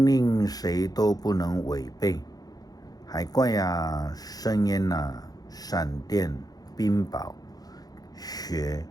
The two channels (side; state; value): right; late; 0.19 ms